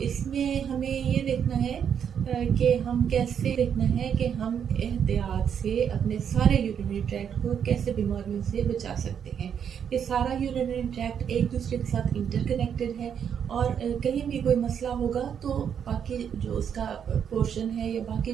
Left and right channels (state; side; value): quieter; left; 8.1 dB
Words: हमें ये देखना है कि हम कैसे देखना है कि हम एहतियात से अपने सारे यूरिनरी ट्रैक्ट को कैसे बीमारियों से बचा सकते हैं। ये सारा यूरिनरी ट्रैक्ट एक दूसरे के साथ इंटरकनेक्टेड है, और कहीं भी कोई मसला होगा तो बाकी जो उसका पोर्शन है या बाकी